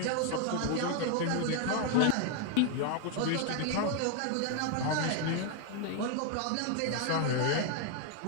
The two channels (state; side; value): different; both; correlation 0.00